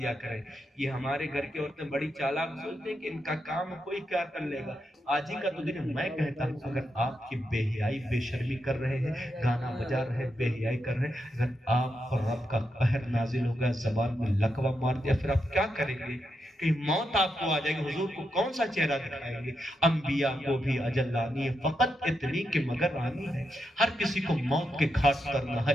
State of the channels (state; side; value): normal; both; correlation 0.84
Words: کریں۔ یہ ہمارے گھر کی عورتیں بڑی چالاک سوچتے ہیں کہ ان کا کام کوئی کیا کر لے گا، آج ہی کا تو دن ہے۔ میں کہتا ہوں اگر آپ کی بے حیائی بے شرمی کر رہے ہیں، گانا بجا رہے ہیں، بے حیائی کر رہے ہیں، اگر آپ پر رب کا قہر نازل ہو گیا، زبان میں لقوہ مار دیا، پھر آپ کیا کریں گے؟ کہ موت آپ کو آ جائے گی، حضور کو کون سا چہرہ دکھائیں گے؟ انبیاء کو بھی اجل آنی ہے، فقط اتنی کہ مگر آنی ہے۔ ہر کسی کو موت کے گھاٹ کرنا ہے۔